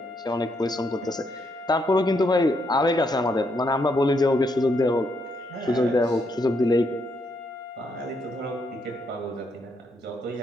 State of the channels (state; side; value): normal; both; correlation 0.76